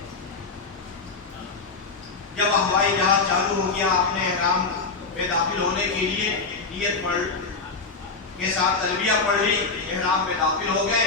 جب ہوائی جہاز چالو ہو گیا آپ نے احرام میں داخل ہونے کے لیے نیت پڑھ کے ساتھ تلبیہ پڑھ لی، احرام میں داخل ہو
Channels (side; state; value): right; quieter; 4.2 dB